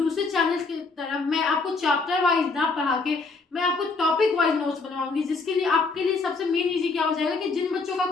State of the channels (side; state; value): right; quieter; 4.0 dB